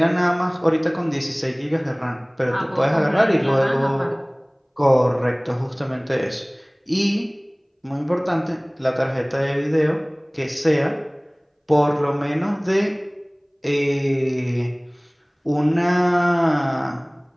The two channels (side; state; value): both; identical; correlation 1.00